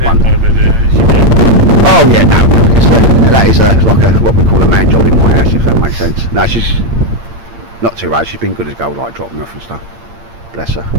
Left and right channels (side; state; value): left; late; 8.7 ms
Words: one. Oh yeah, no, that is like what we call a man job in my house, if that makes sense. No, she's not too bad, she's been good as gold, like dropping off and stuff. Bless her.